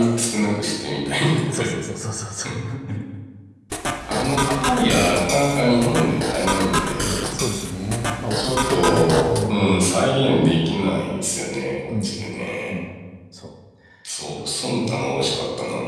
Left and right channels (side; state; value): both; identical; correlation 1.00